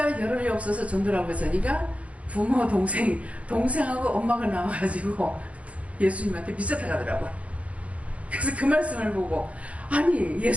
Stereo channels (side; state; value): left; late; 0.065 ms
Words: 겨를이 없어서 전도라고 했으니까 부모 동생하고 엄마가 나와가지고 예수님한테 미쳤다 가더라고. 그래서 그 말씀을 보고 아니